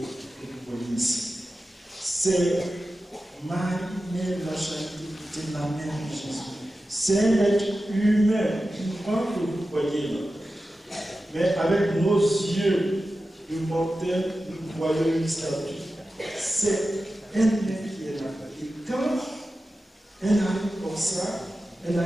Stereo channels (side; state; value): both; normal; correlation 0.93